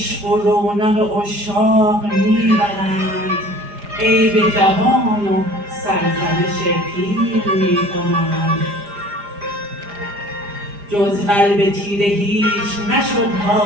و رونق عشاق می برند، عیب جوان و سرزنش پیر می کنند. جز قلب تیره هیچ نشد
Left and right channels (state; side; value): late; left; 4.9 ms